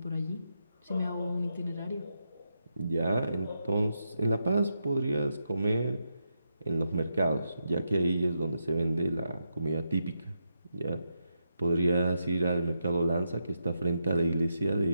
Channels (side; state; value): both; inverted; correlation -0.84